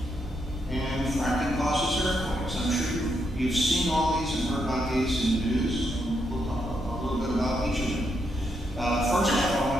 And fracking causes earthquakes. I'm sure you've seen all these and heard about these in the news. And we'll talk a little bit about each of them. First off, I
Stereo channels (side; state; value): both; normal; correlation 0.80